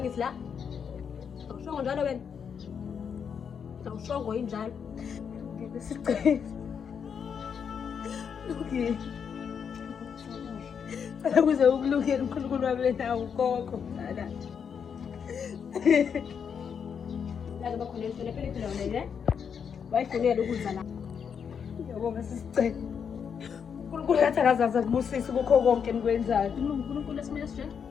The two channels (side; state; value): right; quieter; 7.0 dB